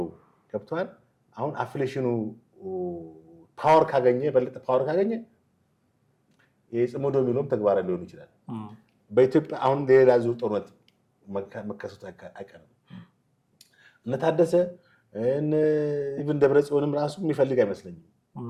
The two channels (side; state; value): both; identical; correlation 1.00